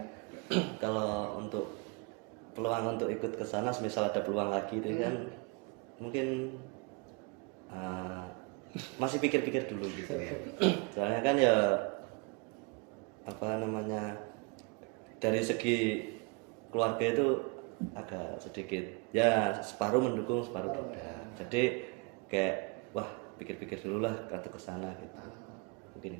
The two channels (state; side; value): quieter; left; 30.7 dB